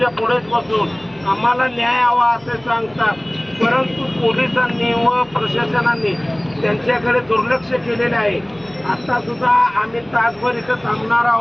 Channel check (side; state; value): right; noise; rumble, 28 dB below the sound